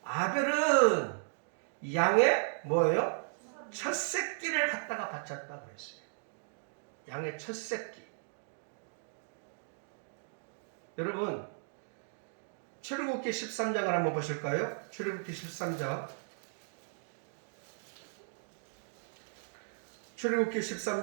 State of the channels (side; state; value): left; silent; digital silence